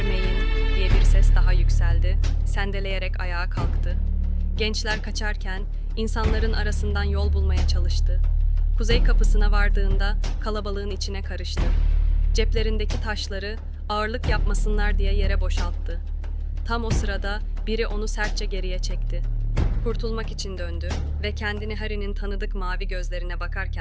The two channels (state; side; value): identical; both; correlation 1.00